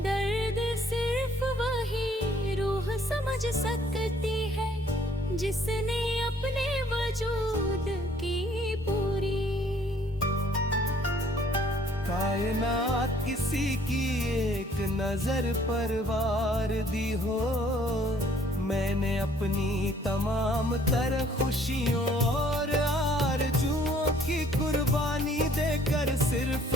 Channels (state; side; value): normal; both; correlation 0.60